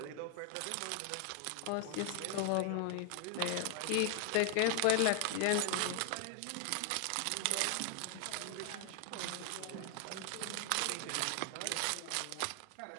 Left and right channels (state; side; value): different; both; correlation 0.00